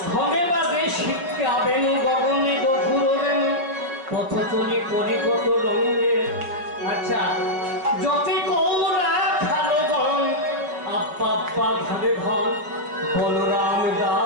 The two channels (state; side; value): late; left; 5.5 ms